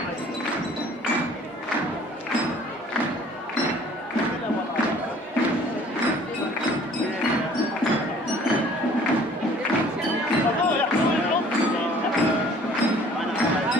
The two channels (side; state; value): both; normal; correlation 0.53